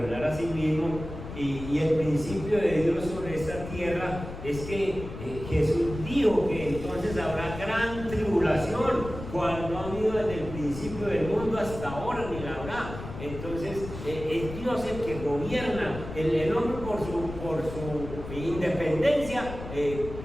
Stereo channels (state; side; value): noise; left; rumble, 10 dB below the sound